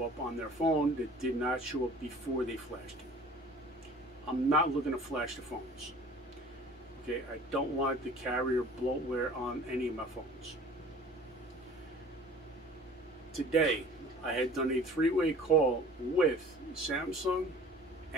up on their phone that did not show up before they flashed it. I'm not looking to flash the phones. Okay, I don't want the carrier bloatware on any of my phones. Today, I had done a three-way call with Samsung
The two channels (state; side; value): normal; both; correlation 0.47